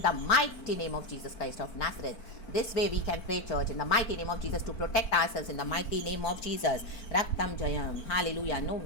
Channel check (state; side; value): late; right; 4.5 ms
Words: the mighty name of Jesus Christ of Nazareth. This way we can pray church in the mighty name of Jesus to protect ourselves in the mighty name of Jesus. रक्तम जयम, hallelujah. No